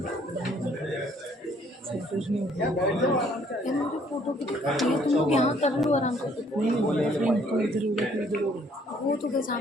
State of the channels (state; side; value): normal; both; correlation 0.63